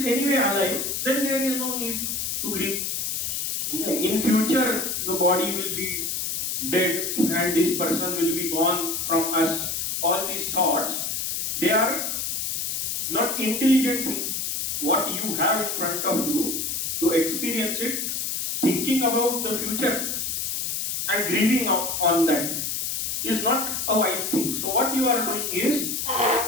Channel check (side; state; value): left; noise; hiss, 1 dB below the sound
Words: anyway alive, then there is no need to grieve. In future the body will be dead and this person will be gone from us. All these thoughts, they are not intelligent thing. What you have in front of you, to experience it, thinking about the future and grieving on that is not a wise thing. So what you are doing is